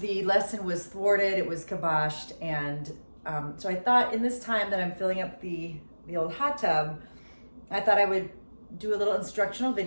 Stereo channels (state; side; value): inverted; both; correlation -1.00